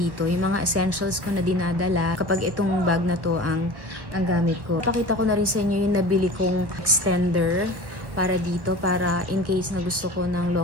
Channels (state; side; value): late; left; 1.4 ms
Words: yung mga essentials ko na dinadala kapag itong bag na to ang gamit ko. Papakita ko na rin sa inyo yung nabili kong extender para dito, para in case na gusto ko ng